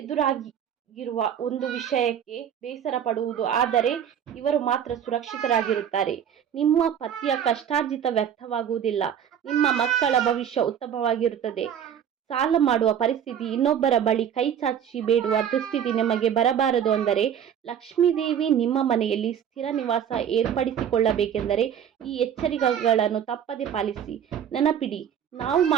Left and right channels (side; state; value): left; quieter; 8.9 dB